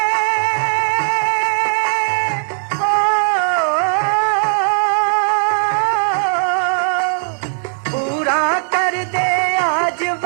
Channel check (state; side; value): silent; left; digital silence